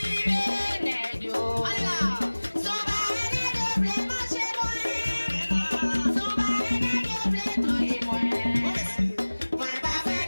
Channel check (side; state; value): both; inverted; correlation -1.00